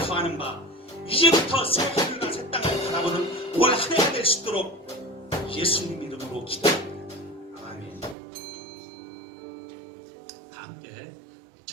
바, 이제부터 새 하늘과 새 땅을 바라보는 올 한 해가 될 수 있도록 예수님 이름으로 기도합니다. 아멘. 다 함께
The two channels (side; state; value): left; drops out; at 8.2 s